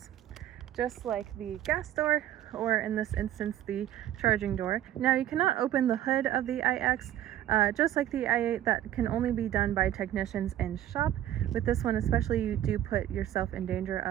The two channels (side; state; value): left; quieter; 12.3 dB